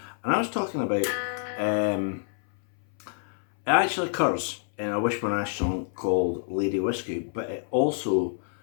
And I was talking about, it actually occurs in a Wishbone Ash song called Lady Whiskey, but it also,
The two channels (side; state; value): right; silent; 60 dB below the other